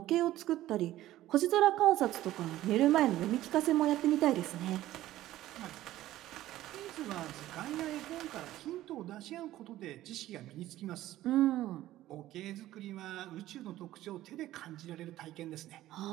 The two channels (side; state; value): left; quieter; 14.7 dB